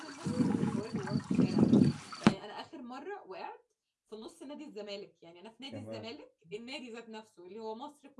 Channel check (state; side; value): identical; both; correlation 1.00